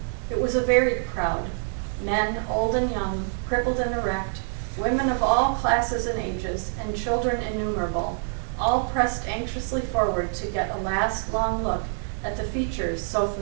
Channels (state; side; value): silent; left; 56 dB below the other